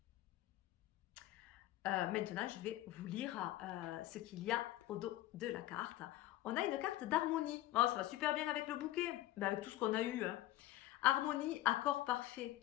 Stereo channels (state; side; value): quieter; right; 15.2 dB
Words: Maintenant, je vais vous lire ce qu'il y a au dos de la carte. On a une carte d'harmonie. Oh, ça va super bien avec le bouquet, ben, avec tout ce qu'on a eu. Hein. Harmonie, accord parfait,